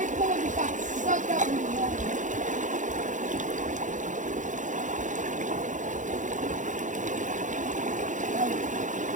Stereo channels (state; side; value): late; left; 0.36 ms